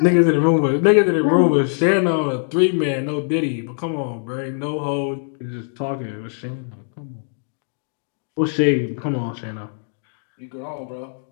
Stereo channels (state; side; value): silent; right; digital silence